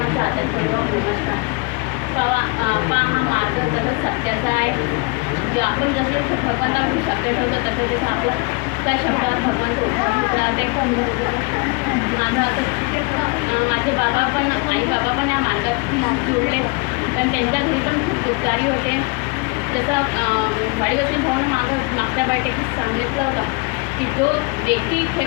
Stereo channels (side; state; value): right; quieter; 29.5 dB